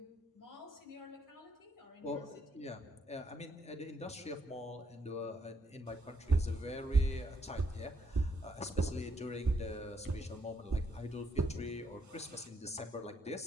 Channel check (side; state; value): both; normal; correlation 0.74